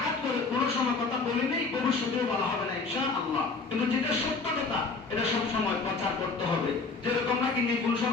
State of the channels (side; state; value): right; quieter; 4.1 dB